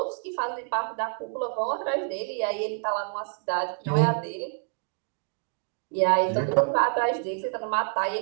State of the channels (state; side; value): silent; left; 60 dB below the other